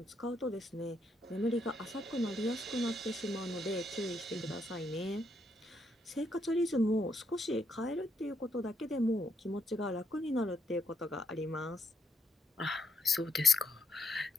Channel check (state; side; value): normal; both; correlation 0.76